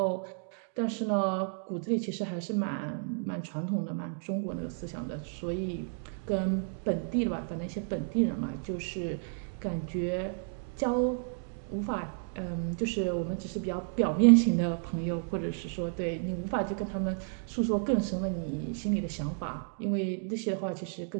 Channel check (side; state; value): left; silent; 56 dB below the other